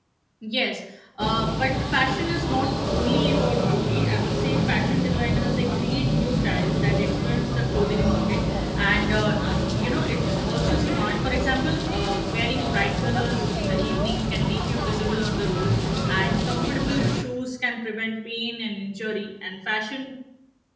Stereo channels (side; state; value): both; identical; correlation 1.00